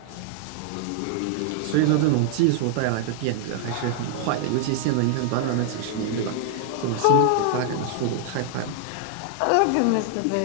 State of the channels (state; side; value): different; both; correlation 0.00